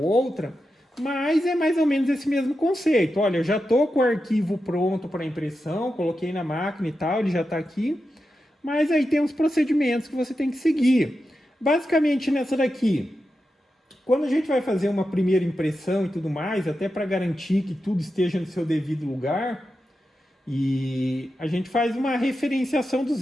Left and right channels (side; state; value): both; normal; correlation 0.89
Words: outra, mas é mais ou menos esse mesmo conceito. Olha, eu já estou com o arquivo pronto para impressão, coloquei na máquina e tal, ele já está aqui, mas aí tem os procedimentos que você tem que seguir. Basicamente nessa daqui, quando a gente vai fazer uma primeira impressão e tudo mais, até para garantir que tudo esteja no seu devido lugar, e a gente faz uma referenciação dos